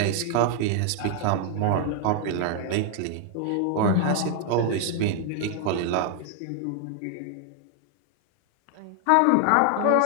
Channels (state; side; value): different; both; correlation 0.00